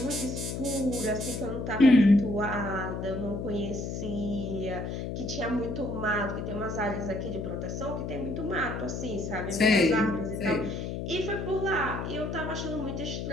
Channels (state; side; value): noise; left; hum, 4 dB below the sound